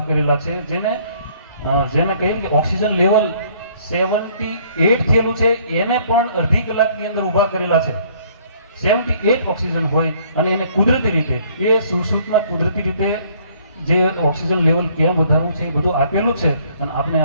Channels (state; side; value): inverted; both; correlation -0.61